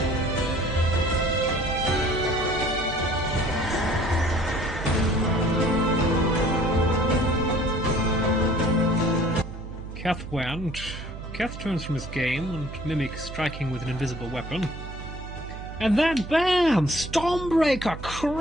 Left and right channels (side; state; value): right; noise; hum, 10 dB below the sound